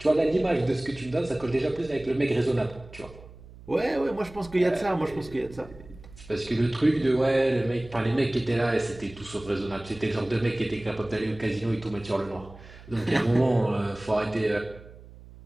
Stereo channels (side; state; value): right; noise; hum, 19 dB below the sound